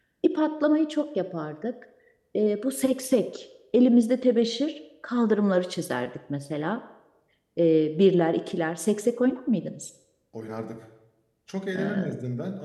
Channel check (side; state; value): both; identical; correlation 1.00